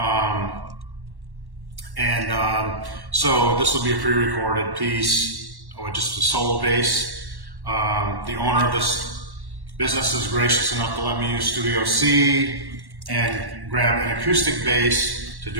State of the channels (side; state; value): left; late; 1.1 ms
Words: So this will be a pre-recorded piece with just a solo bass. The owner of this business is gracious enough to let me use Studio C and grab an acoustic bass to